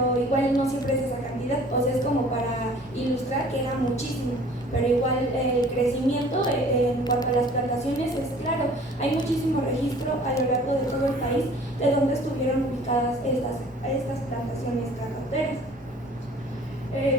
igual no siempre es esa cantidad, o sea, es como para ilustrar que era muchísimo, pero igual el crecimiento en cuanto a las plantaciones es claro, hay muchísimo registro a lo largo de todo el país de donde estuvieron ubicadas estas plantaciones cacauteras.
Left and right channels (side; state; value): both; normal; correlation 0.50